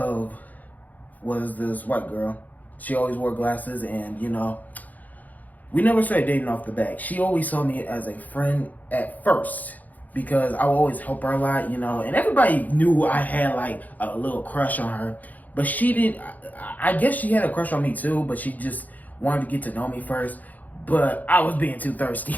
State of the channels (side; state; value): right; late; 0.080 ms